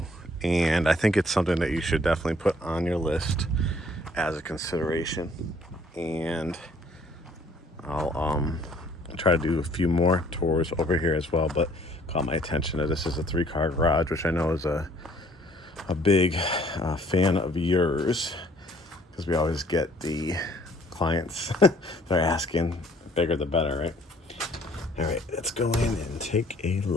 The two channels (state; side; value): normal; both; correlation 0.60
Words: and I think it's something that you should definitely put on your list as a consideration. And I'll try to do a few more tours over here as well, but caught my attention that this is a 3-car garage, which I know is a big fan of yours, because we always get the clients they're asking bigger the better, right? All right, let's go in and take a